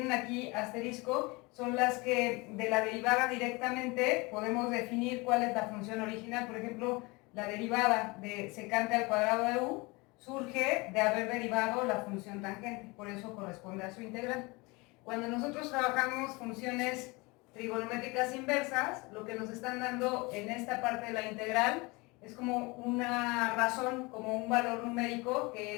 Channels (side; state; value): right; quieter; 25.5 dB